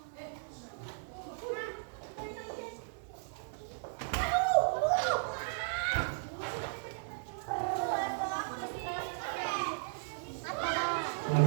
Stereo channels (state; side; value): silent; left; digital silence